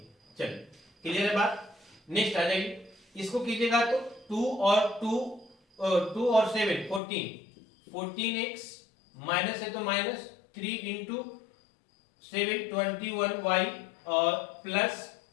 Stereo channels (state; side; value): drops out; right; at 7.0 s